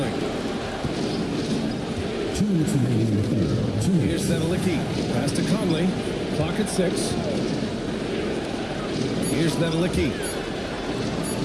Here's Nedelicki. Pass to Conley. Clock at 6. Here's Nedelicki.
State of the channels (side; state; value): both; identical; correlation 1.00